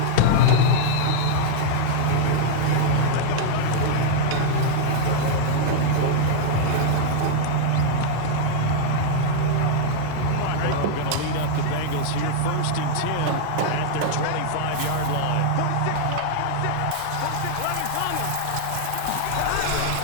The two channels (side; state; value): both; different; correlation -0.01